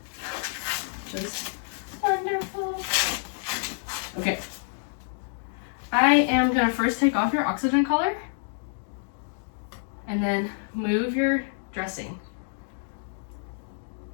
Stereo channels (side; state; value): right; silent; digital silence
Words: Just wonderful. Okay. I am gonna first take off your oxygen collar and then move your dressing.